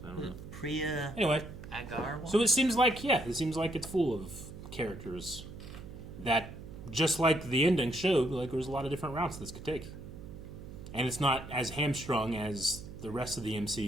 I don't know. Priya Anyway. Agarwal? So it seems like it's full of characters that just like the ending showed, like there's a lot of different routes this could take. And it's not as hamstrung as the rest of the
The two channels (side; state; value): right; noise; hum, 13 dB below the sound